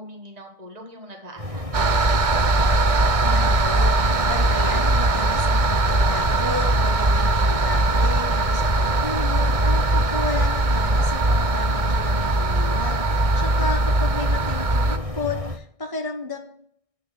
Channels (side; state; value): left; late; 1.6 ms